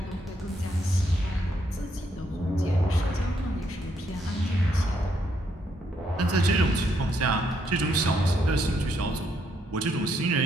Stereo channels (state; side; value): normal; both; correlation 0.75